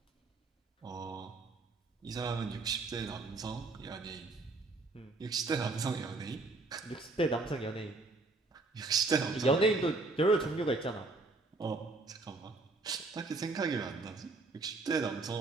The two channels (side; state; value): left; quieter; 3.4 dB